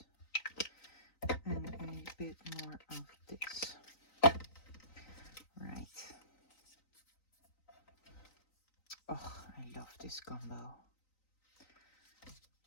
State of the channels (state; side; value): late; right; 3.9 ms